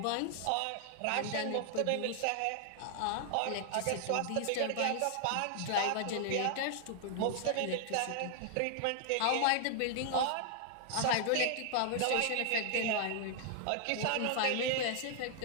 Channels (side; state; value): both; different; correlation 0.00